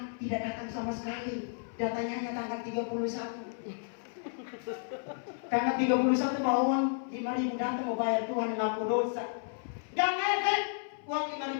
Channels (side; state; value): right; silent; 56 dB below the other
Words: tidak datang sama sekali. Datanya hanya tanggal 31. Tanggal 31 bawa uang 5.000 datang mau bayar Tuhan ngaku dosa. Gak ngefek. Uang